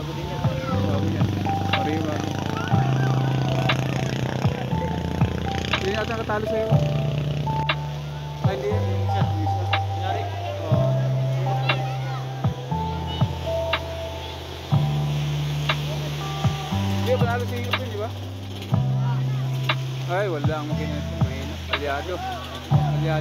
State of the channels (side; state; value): both; identical; correlation 1.00